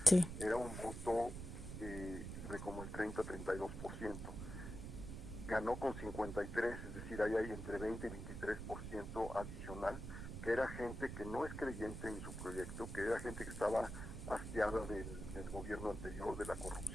sí, era un voto de como el 30-32%. Ganó con 53, es decir, ahí hay entre 20 y 23% adicional, que era gente que no es creyente en su proyecto, que era gente que estaba hastiada del gobierno anterior, de la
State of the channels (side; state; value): right; noise; rumble, 7 dB below the sound